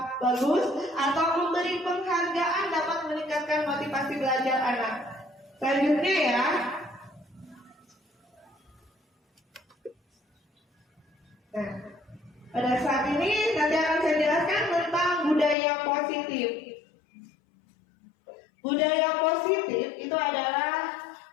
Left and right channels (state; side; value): drops out; right; at 15.6 s